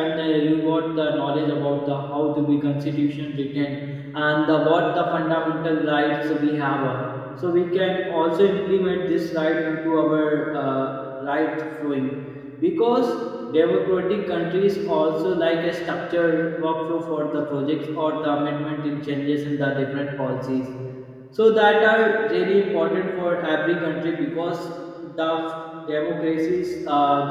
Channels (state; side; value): identical; both; correlation 1.00